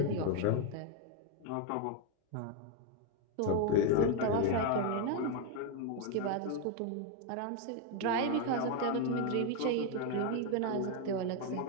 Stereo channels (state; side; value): different; both; correlation 0.01